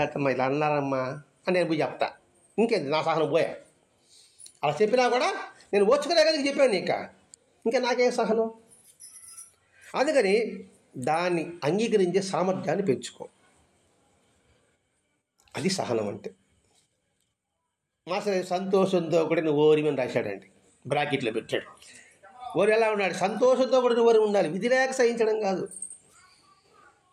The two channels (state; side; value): identical; both; correlation 1.00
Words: ఇలా అన్నారమ్మా అని నేను పోయి చెప్తా. ఇంకేంది నా సహనం పోయా. అలా చెప్పినా కూడా నేను ఓర్చుకునే కదా చెప్పాను ఇంకా నాకేం సహనం. అందుకని దాన్ని అంగీకరించే సామర్థ్యాన్ని పెంచుకో. అది సహనం అంటే. మాస్టర్ సంతోషంతో కూడా నువ్వు ఓరిమని రాశాడండి, బ్రాకెట్లో పెట్టాడు. ఓరి ఎలా ఉన్నాడు? సంతోషంతో కూడా నువ్వు ఓరి ఉండాలి. విధి లేక సహించడం కాదు,